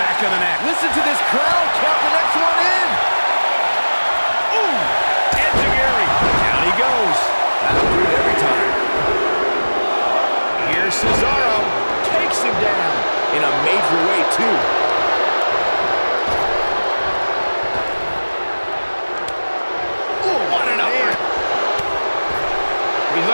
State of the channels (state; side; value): inverted; both; correlation -1.00